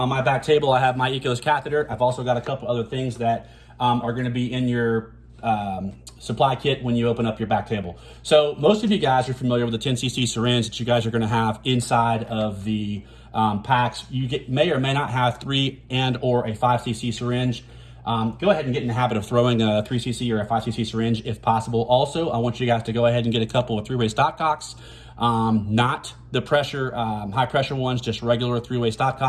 my back table, I have my EKOS catheter. I've also got a couple other things that are going to be in your supply kit when you open up your back table. So most of you guys are familiar with the 10cc syringe that you guys are going to have inside of the packs. You may or may not have 3 and or a 5cc syringe. Go ahead and get in the habit of throwing a 3cc or a 5cc syringe if possible. Also, I want you guys to go ahead and get a couple of 3-way stopcocks, not the pressure, high pressure ones, just regular 3-way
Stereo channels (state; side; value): identical; both; correlation 1.00